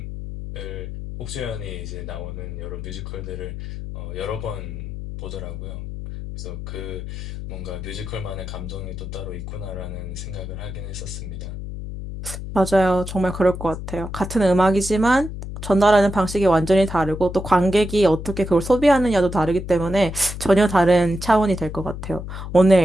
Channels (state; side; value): noise; left; hum, 8 dB below the sound